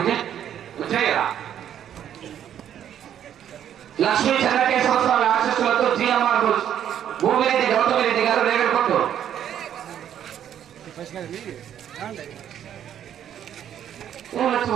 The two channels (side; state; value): left; quieter; 10.0 dB